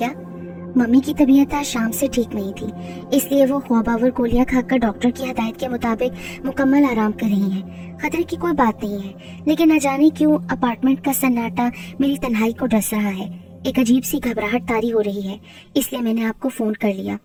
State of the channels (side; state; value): both; identical; correlation 1.00